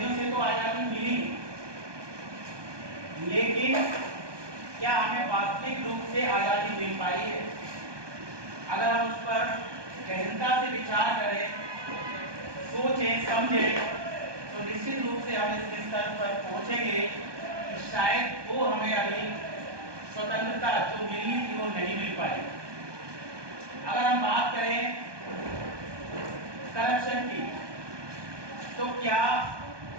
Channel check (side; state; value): left; late; 1.2 ms